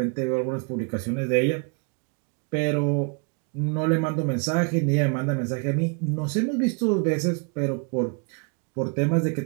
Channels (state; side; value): quieter; left; 35.4 dB